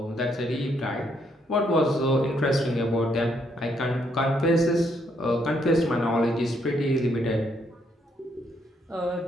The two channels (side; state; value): both; normal; correlation 0.73